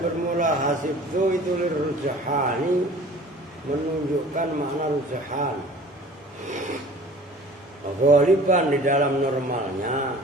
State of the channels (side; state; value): both; normal; correlation 0.46